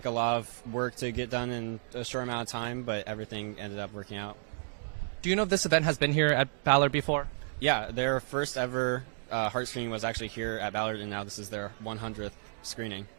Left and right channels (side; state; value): left; silent; digital silence